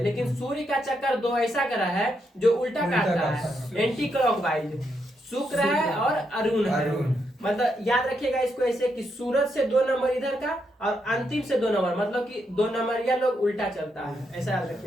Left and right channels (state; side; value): normal; both; correlation 0.80